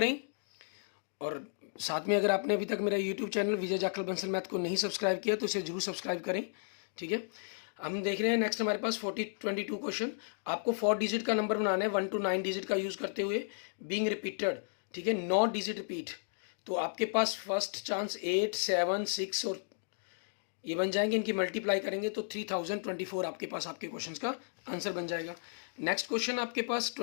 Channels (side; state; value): right; silent; digital silence